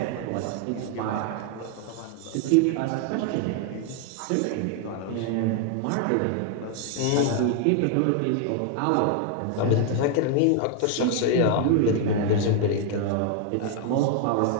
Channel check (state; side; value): different; both; correlation 0.00